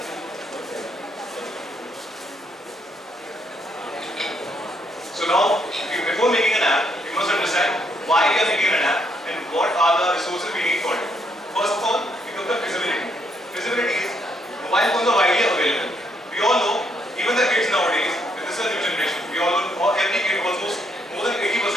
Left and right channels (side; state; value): both; normal; correlation 0.73